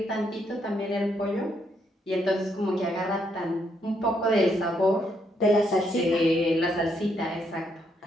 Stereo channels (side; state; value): both; normal; correlation 0.75